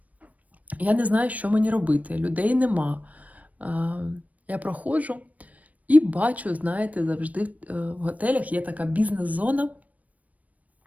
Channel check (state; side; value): late; left; 0.071 ms